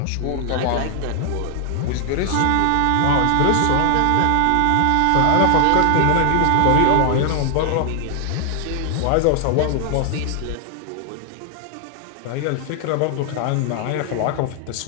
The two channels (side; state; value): both; different; correlation 0.00